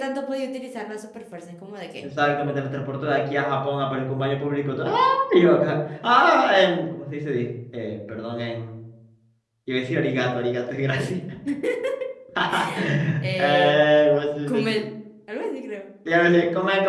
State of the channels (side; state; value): both; identical; correlation 1.00